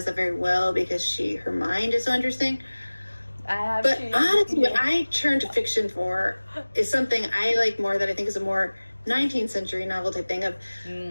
that very well because her mind is so interesting. But honestly, what I turn to fiction for is something I like more, that I think is a more 19th century novel type thing of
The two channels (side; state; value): both; inverted; correlation -1.00